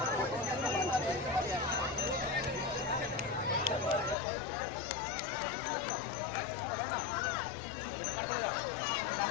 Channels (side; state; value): right; drops out; at 4.2 s